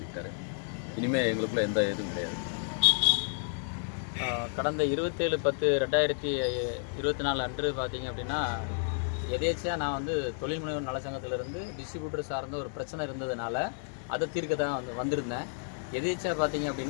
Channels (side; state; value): right; silent; digital silence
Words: இனிமேல் எங்களுக்குள்ள எந்த இதுவும் கிடையாது. கடந்த 27/10/2024 அன்று பார்த்தீங்க அப்படின்னா எதேச்சியாக நான் தொழில் முனைவோர் நலச்சங்கத்திலிருந்து டிஸ்ட்ரிபியூட்டர் சார்ந்த ஒரு பிரச்சனை இருந்ததுனால அதை தீர்க்க தான் வந்திருந்தேன். எதேச்சியாக பார்த்தீங்க